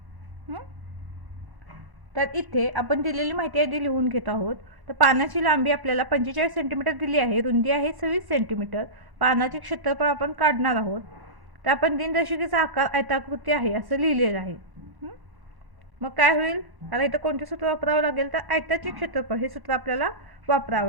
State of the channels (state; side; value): late; left; 1.1 ms